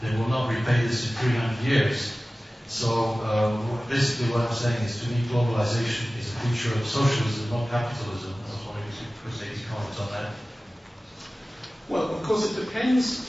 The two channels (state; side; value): normal; both; correlation 0.97